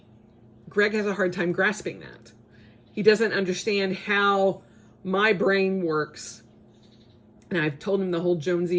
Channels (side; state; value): both; identical; correlation 1.00